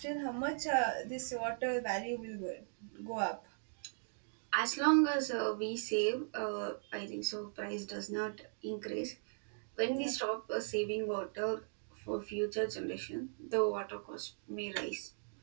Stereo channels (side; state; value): left; silent; digital silence